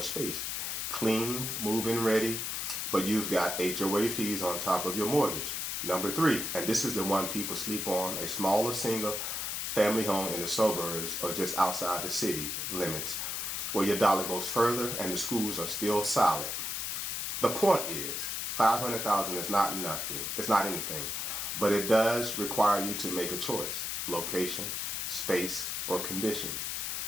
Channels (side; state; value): left; noise; hiss, 2 dB below the sound